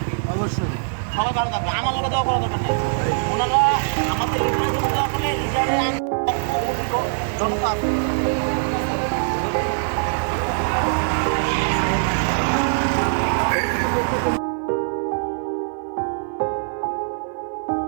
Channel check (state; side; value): silent; left; 56 dB below the other